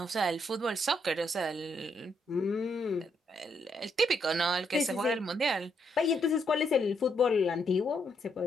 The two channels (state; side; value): normal; both; correlation 0.76